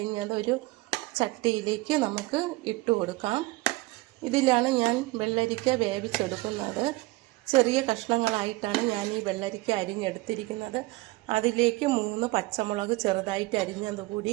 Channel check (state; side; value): quieter; left; 21.3 dB